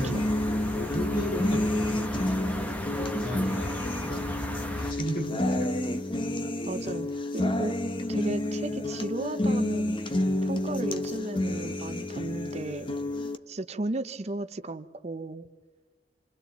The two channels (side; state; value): both; normal; correlation 0.78